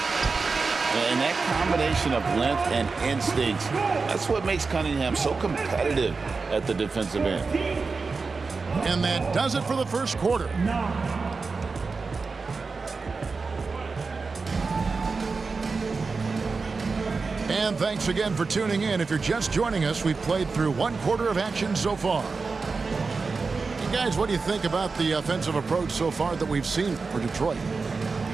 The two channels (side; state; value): left; quieter; 4.4 dB